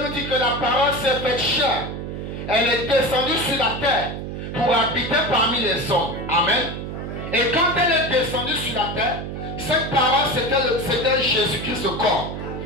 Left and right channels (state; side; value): noise; right; hum, 7 dB below the sound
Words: nous dit que la parole s'est faite chair. Elle est descendue sur la terre pour habiter parmi les hommes. Amen. Et quand elle est descendue sur la terre, cette parole c'était Jésus-Christ le corps.